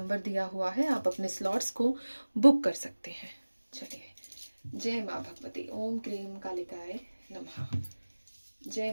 दिया हुआ है, आप अपने स्लॉट्स को बुक कर सकते हैं। चलिए, जय माँ भगवती। ओम क्रीम कालिकाय नमः। जय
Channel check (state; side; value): inverted; both; correlation -1.00